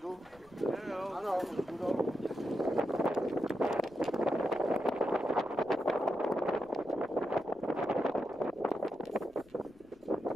Ano, už jdu dolů.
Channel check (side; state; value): left; noise; rumble, 28 dB below the sound